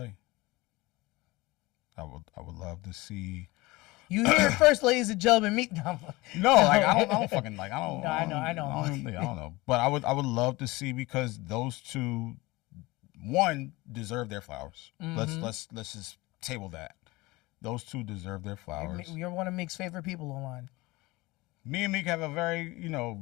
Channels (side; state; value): right; quieter; 21.5 dB